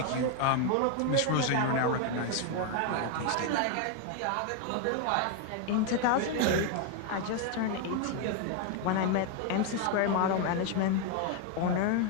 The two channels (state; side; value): different; both; correlation 0.00